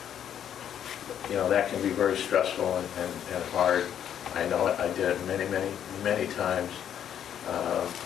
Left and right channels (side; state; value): right; quieter; 9.6 dB